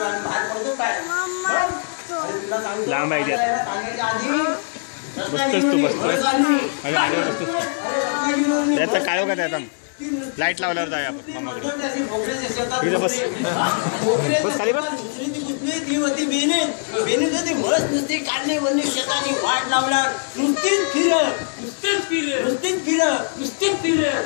बाहेर पडतो काय लांब आहे सांगायच्या आधी बसतोस तू बसतोस त्याचा काय का त्याचा लाईट लावल्यावर जाऊया आपण मामाकडे तिथे बस बस खाली बस ती होती बेने होती मस्त नुसती काढली वरली शेताची वाट लावणार नुसतीच फिर अरे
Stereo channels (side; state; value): right; silent; digital silence